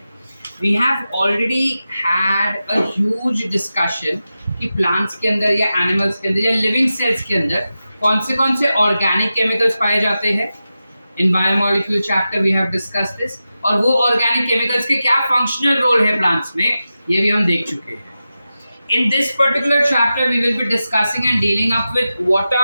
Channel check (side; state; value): both; inverted; correlation -0.92